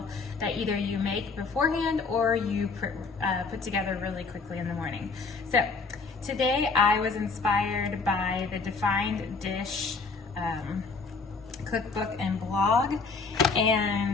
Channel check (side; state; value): right; quieter; 4.4 dB